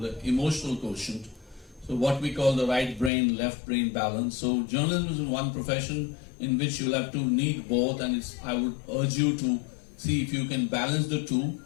emotional quotient. So what we call the right brain, left brain balance. So journalism is one profession in which you'll have to need both, and I would urge you to see if you can balance the two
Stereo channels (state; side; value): drops out; right; at 3.1 s